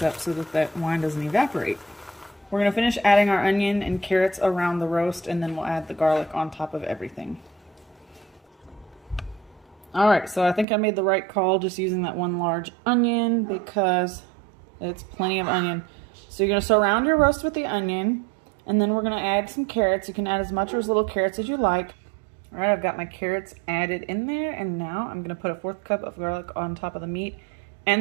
up so that that wine doesn't evaporate. We're going to finish adding our onion and carrots around the roast, and then we'll add the garlic on top of everything. All right, so I think I made the right call just using that 1 large onion because it's plenty of onion. So you're going to surround your roast with the onion, and then we're going to add some carrots. You can add as much or as little carrots as you like. All right, I've got my carrots added in there, and now I'm going to put a 1/4 cup of garlic on top of the meat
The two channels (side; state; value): left; drops out; at 10.7 s